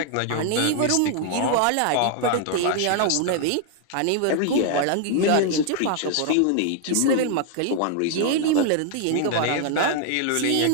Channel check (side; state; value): both; different; correlation 0.00